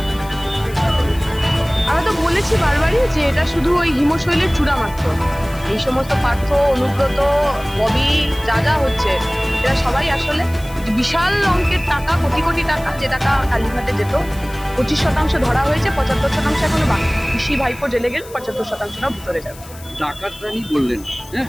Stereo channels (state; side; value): noise; left; hiss, 20 dB below the sound